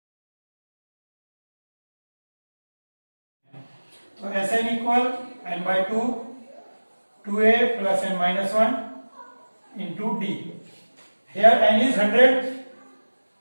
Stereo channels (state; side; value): inverted; both; correlation -1.00